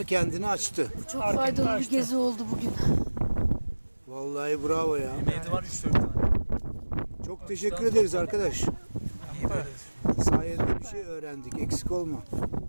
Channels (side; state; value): both; inverted; correlation -1.00